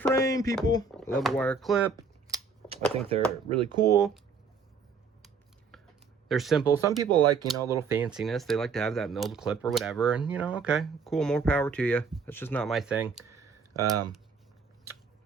people. I love a wire clip. I think they're really cool. They're simple. Some people like, you know, a little fanciness. They like to have that milled clip or whatever. And, you know, okay, cool. More power to you. That's just not my thing. So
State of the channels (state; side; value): quieter; left; 5.3 dB